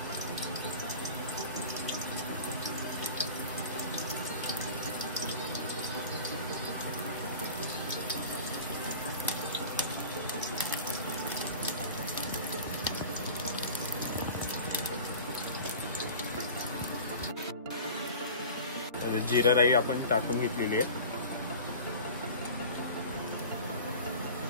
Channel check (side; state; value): both; inverted; correlation -0.38